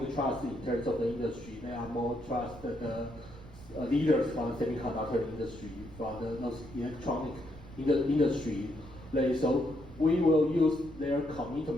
trust in terms of the industry, they are more trust the leaders from the semiconductor industry, from those electronic industry. So we will use their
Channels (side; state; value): right; noise; rumble, 17 dB below the sound